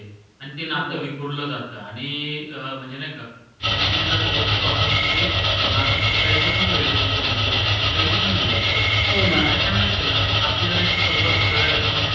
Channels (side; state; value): both; identical; correlation 1.00